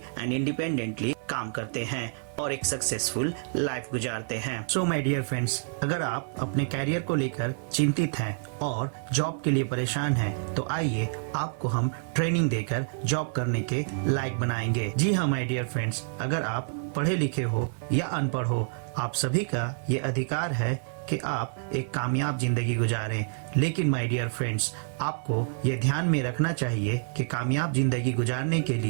एंड इंडिपेंडेंटली काम करते हैं और एक सक्सेसफुल लाइफ गुजारते हैं। सो माय डियर फ्रेंड्स, अगर आप अपने कैरियर को लेकर चिंतित हैं और जॉब के लिए परेशान हैं, तो आइए आपको हम ट्रेनिंग देकर जॉब करने के लायक बनाएंगे। जी हाँ माय डियर फ्रेंड्स, अगर आप पढ़े लिखे हो या अनपढ़ हो, आप सभी का ये अधिकार है कि आप एक कामयाब जिंदगी गुजारें। लेकिन माय डियर फ्रेंड्स, आपको ये ध्यान में रखना चाहिए कि कामयाब जिंदगी गुजारने के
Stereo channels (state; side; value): silent; left; 59 dB below the other